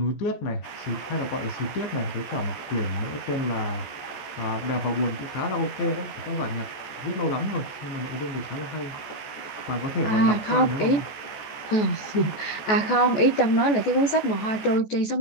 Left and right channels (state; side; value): late; right; 14 ms